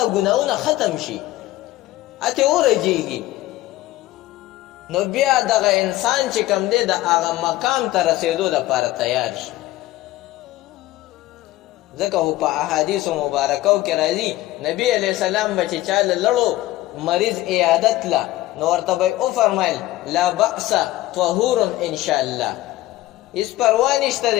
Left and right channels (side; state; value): right; quieter; 16.3 dB